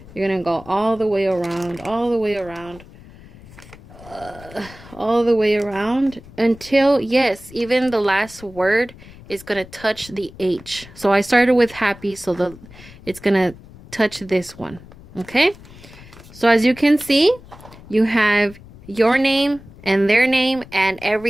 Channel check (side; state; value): left; noise; rumble, 20 dB below the sound